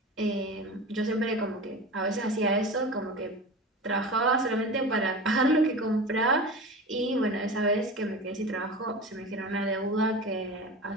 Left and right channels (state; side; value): normal; both; correlation 0.32